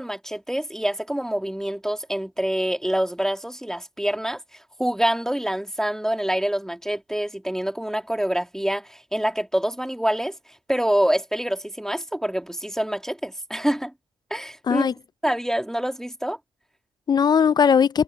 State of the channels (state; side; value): normal; both; correlation 0.87